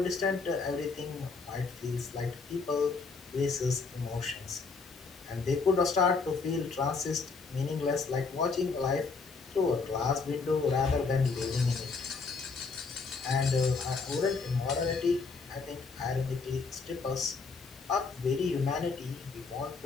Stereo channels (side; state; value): right; quieter; 4.5 dB